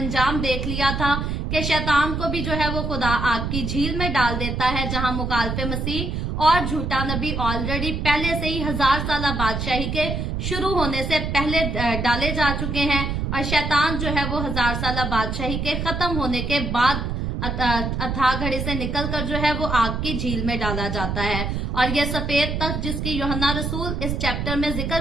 देख लिया था कि शैतान को भी जो है वो खुदा आग की झील में डाल देता है, जहां मुखालिफे मसीह और झूठा नबी ऑलरेडी पहले से ही 1000 साल बादशाही के शुरू होने से पहले डाले जा चुके हैं, और शैतान जो है वो 1000 साल बादशाही के खत्म होने के बाद अथाह घड़ी से निकलकर जो है वो आग की झील में डाला जाता है। और ये सफेद तख्त जिसकी यूहन्ना रसूल इस चैप्टर में जिक्र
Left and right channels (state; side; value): noise; right; rumble, 2 dB below the sound